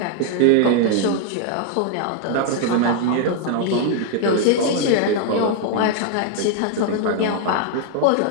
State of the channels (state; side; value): different; both; correlation 0.00